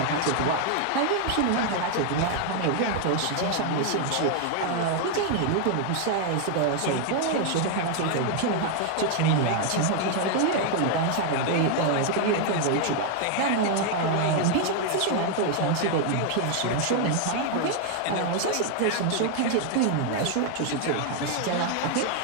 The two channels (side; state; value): both; different; correlation 0.00